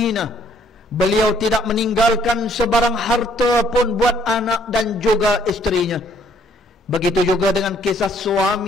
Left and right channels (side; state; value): both; normal; correlation 0.64